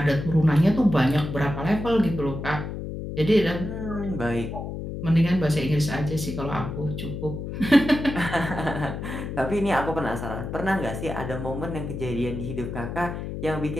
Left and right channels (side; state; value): left; noise; hum, 6 dB below the sound